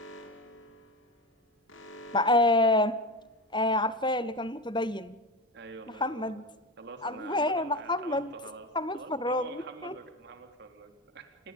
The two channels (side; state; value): both; normal; correlation 0.24